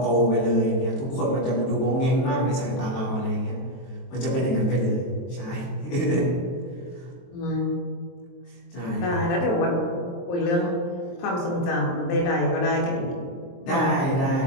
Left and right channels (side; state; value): right; late; 23 ms